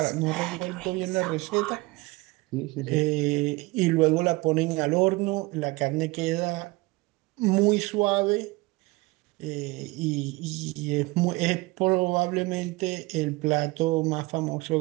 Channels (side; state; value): left; quieter; 23.0 dB